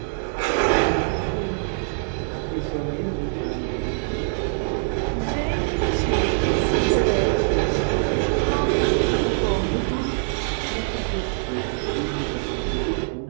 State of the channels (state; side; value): silent; left; digital silence